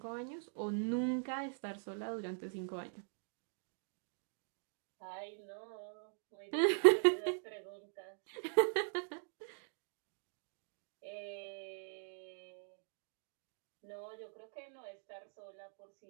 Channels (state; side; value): silent; left; digital silence